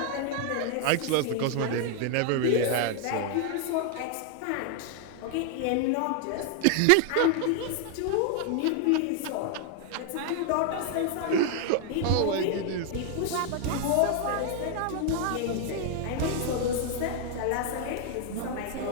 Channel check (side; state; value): both; different; correlation 0.00